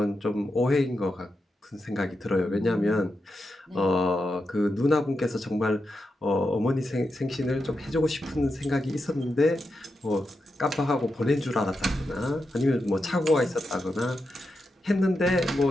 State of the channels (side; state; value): both; normal; correlation 0.87